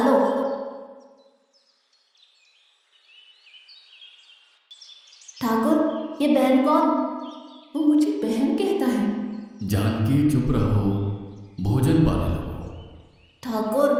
लो। ठाकुर, ये बहन कौन? वो मुझे बहन कहता है। जानकी चुप रहो, भोजन पाने लगो। ठाकुर,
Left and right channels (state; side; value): identical; both; correlation 1.00